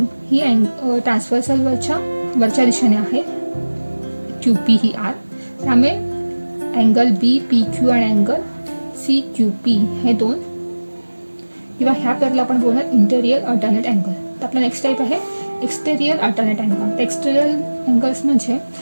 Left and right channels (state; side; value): inverted; both; correlation -1.00